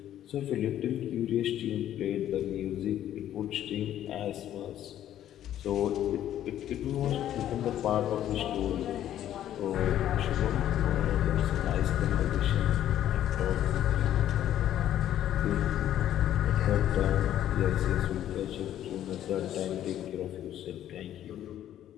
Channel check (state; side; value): quieter; right; 11.6 dB